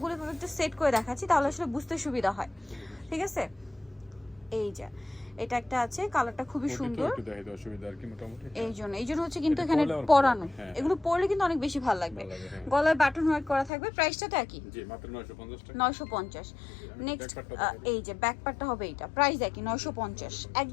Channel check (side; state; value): right; drops out; at 13.7 s